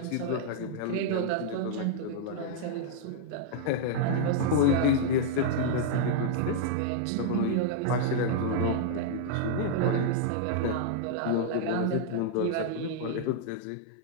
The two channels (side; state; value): both; different; correlation -0.01